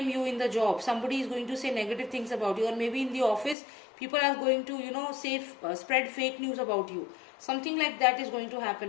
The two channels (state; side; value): drops out; right; at 3.6 s